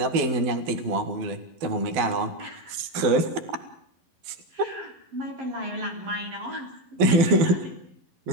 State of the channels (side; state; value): left; late; 12 ms